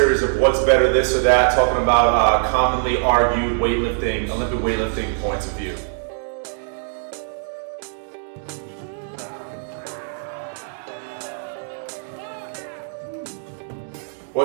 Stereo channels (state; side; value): silent; left; digital silence